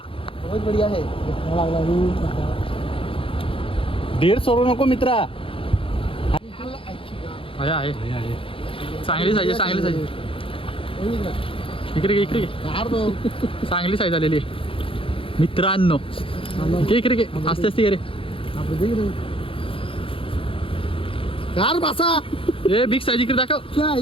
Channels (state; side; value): late; right; 0.26 ms